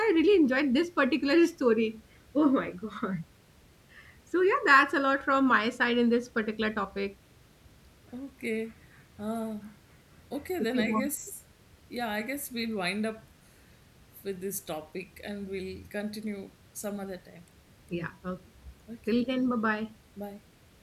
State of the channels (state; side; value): identical; both; correlation 1.00